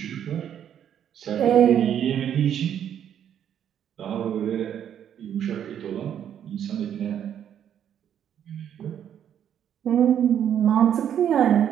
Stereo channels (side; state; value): left; quieter; 9.5 dB